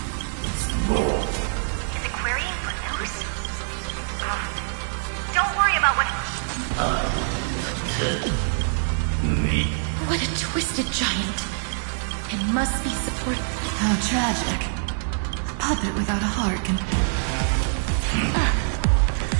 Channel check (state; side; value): silent; left; digital silence